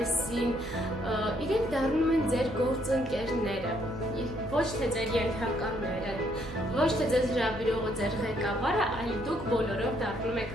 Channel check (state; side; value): noise; right; hum, 13 dB below the sound